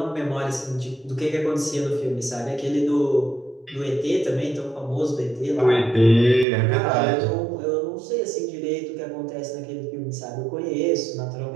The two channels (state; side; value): drops out; left; at 6.5 s